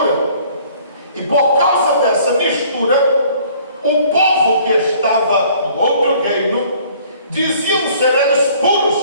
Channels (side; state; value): both; inverted; correlation -0.55